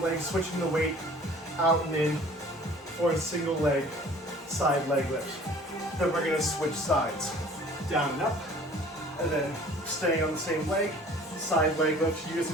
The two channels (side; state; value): both; normal; correlation 0.49